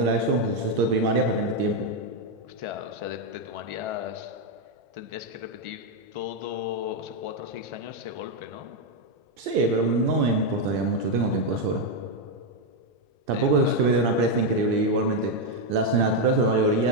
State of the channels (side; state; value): left; late; 2.6 ms